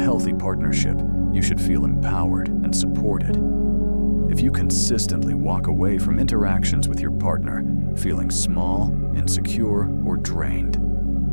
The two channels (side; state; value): both; inverted; correlation -1.00